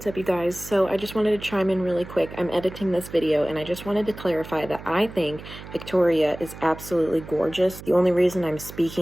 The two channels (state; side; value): noise; right; hum, 14 dB below the sound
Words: up, you guys? So I just wanted to chime in really quick. I'm editing this video and I just wanted to clarify that I think Victoria is absolutely gorgeous. The only reason I'm